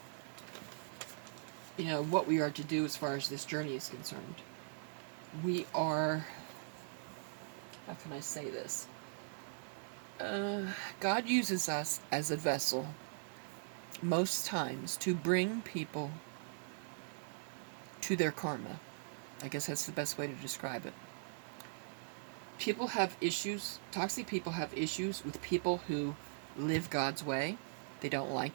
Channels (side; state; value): left; silent; digital silence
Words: what we are to do as far as this journey is concerned. We are, how can I say this? God uses us as a vessel most times to bring people to their karma. I guess that's the best way to describe it. People have issues, toxic people have issues with people who live God's way. They don't